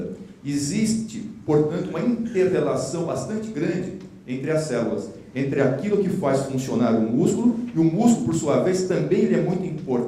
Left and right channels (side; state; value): both; identical; correlation 1.00